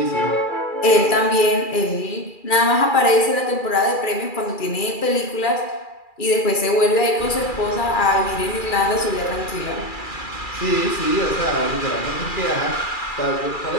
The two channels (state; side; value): late; right; 2.4 ms